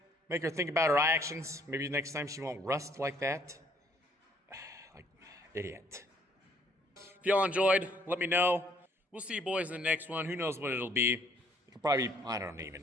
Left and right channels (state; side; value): normal; both; correlation 0.64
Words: Make her think about her actions. Maybe next time she won't rust like that. Like, idiot. If y'all enjoyed, let me know. We'll see you boys in the next one. Who knows what it'll be. It'll probably, I don't